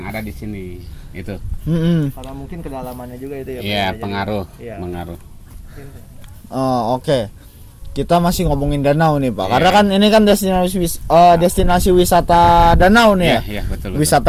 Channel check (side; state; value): both; identical; correlation 1.00